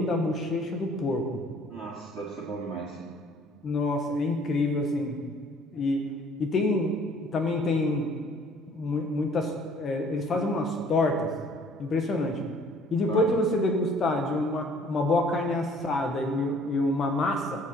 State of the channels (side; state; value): both; normal; correlation 0.56